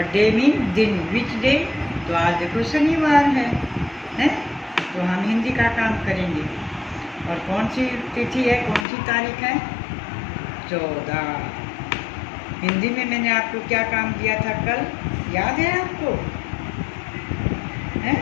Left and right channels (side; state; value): right; drops out; at 8.8 s